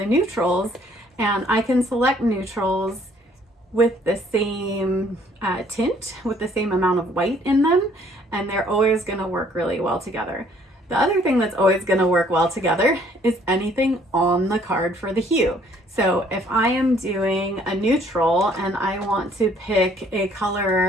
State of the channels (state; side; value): normal; both; correlation 0.61